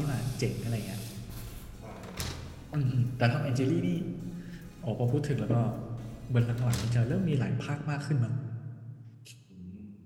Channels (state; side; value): identical; both; correlation 1.00